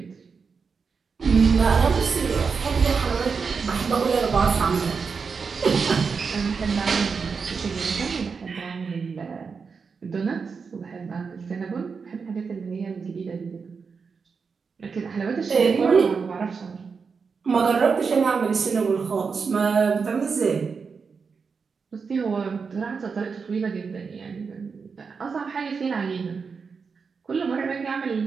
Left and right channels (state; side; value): quieter; left; 5.4 dB